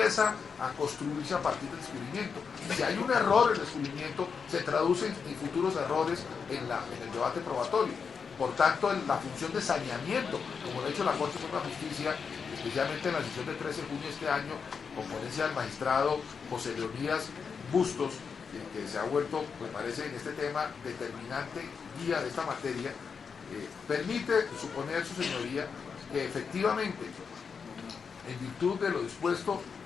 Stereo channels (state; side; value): quieter; right; 5.9 dB